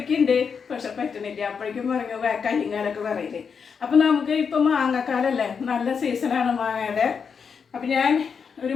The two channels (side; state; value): right; quieter; 6.2 dB